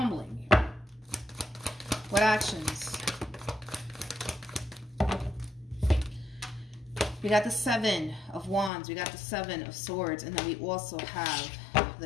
blame you. What actions? We got the 7 of Wands. We got the 7 of Swords. And then we also have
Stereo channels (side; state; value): right; drops out; at 8.7 s